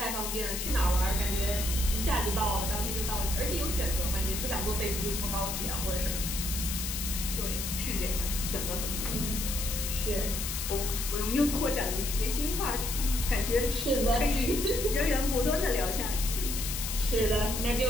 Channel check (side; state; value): left; noise; hiss, 4 dB below the sound